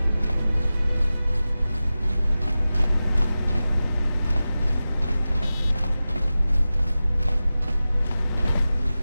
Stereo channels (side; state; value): both; inverted; correlation -0.95